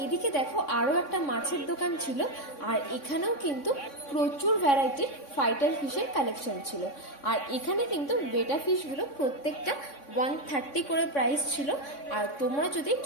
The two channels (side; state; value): right; late; 3.6 ms